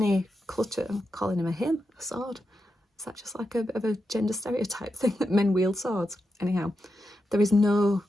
clutter. I'm calling him a sword. Is that just like a bit of a gender stereotype thing that men wield swords? Anyhow, there is no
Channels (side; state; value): both; normal; correlation 0.87